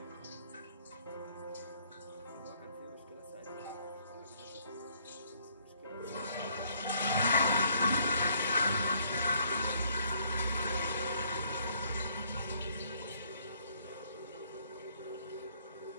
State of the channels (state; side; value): inverted; both; correlation -0.66